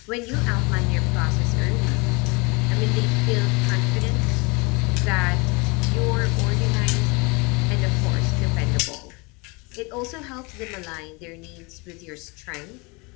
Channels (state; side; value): quieter; right; 28.1 dB